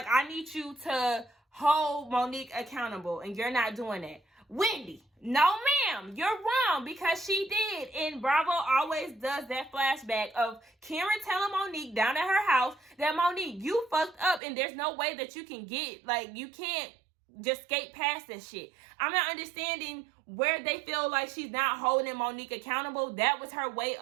I need you to hold Monique accountable, and you're not doing that. Wendy, no ma'am, you're wrong, because she did. And Bravo always does that flashback of Karen telling Monique down at her house that, Monique, you fucked up, and there's no way that you can you can't just skate past this shit. I'm not understanding where they feel like she's not holding Monique accountable. That was her way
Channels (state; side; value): drops out; left; at 14.4 s